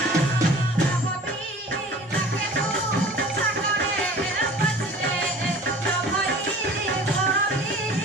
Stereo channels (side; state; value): both; normal; correlation 0.44